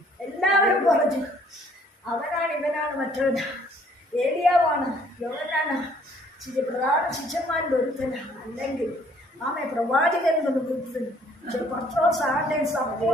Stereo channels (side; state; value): both; normal; correlation 0.61